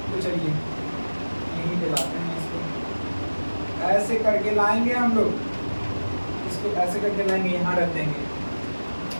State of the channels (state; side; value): inverted; both; correlation -1.00